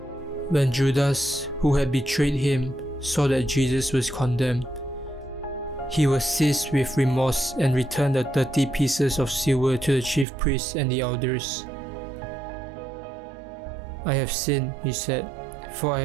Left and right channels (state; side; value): drops out; left; at 10.2 s